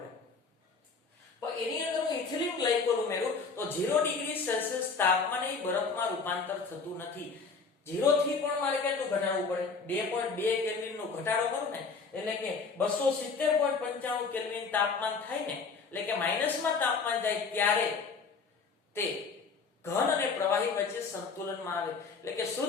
પણ એની અંદર હું ઇથિલિન ગ્લાયકોલ ઉમેરું તો 0 ડિગ્રી સેલ્સિયસ તાપમાને એ બરફમાં રૂપાંતર થતું નથી. 0 થી પણ મારે કેટલું ઘટાડવું પડે? 2.2 કેલ્વિન નો ઘટાડો કરું ને એટલે કે 270.95 કેલ્વિન તાપમાન થાય ને એટલે કે માઈનસમાં તાપમાન જાય ત્યારે તે ઘન અને પ્રવાહી વચ્ચે સંતુલનમાં આવે એટલે કે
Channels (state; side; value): quieter; right; 4.8 dB